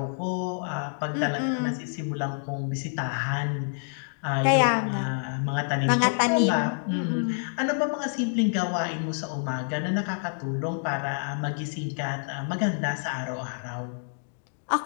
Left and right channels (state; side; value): silent; right; digital silence